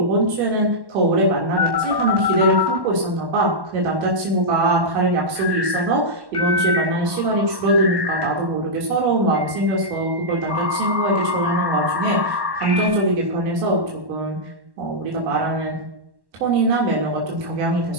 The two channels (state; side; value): late; left; 1.1 ms